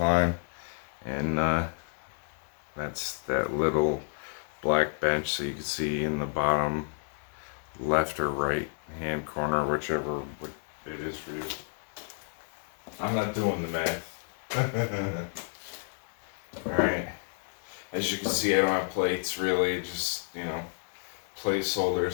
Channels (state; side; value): silent; right; digital silence